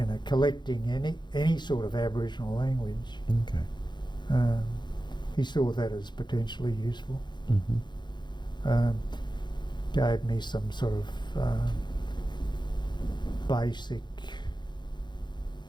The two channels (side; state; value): right; late; 0.21 ms